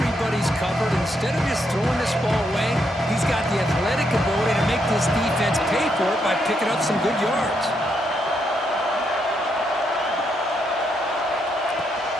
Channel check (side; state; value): both; normal; correlation 0.78